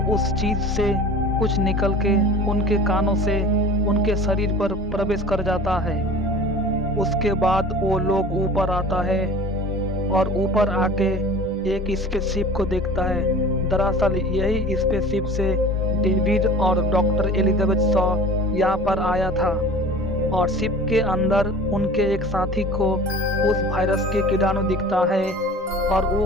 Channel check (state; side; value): normal; both; correlation 0.41